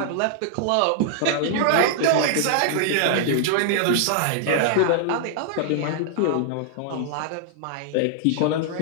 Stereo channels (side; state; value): both; different; correlation -0.01